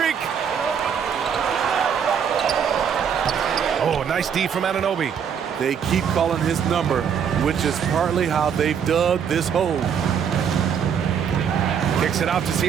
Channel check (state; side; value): quieter; left; 7.6 dB